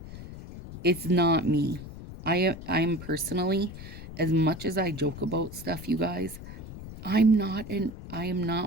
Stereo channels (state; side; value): noise; left; rumble, 12 dB below the sound